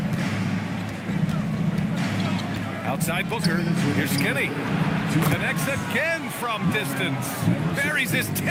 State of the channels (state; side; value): identical; both; correlation 1.00